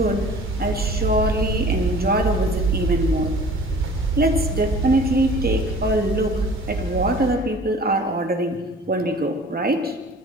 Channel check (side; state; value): both; normal; correlation 0.46